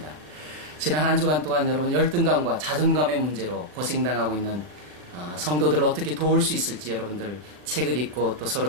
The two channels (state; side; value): late; left; 39 ms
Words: 지난 한 주간 동안 여러분 열등감과 자존감의 문제로 고생당하고 있는 성도들을 어떻게 도울 수 있을지 여러분들 책을 읽고 또